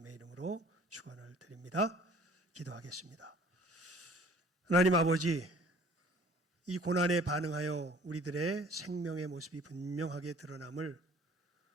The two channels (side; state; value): both; normal; correlation 0.52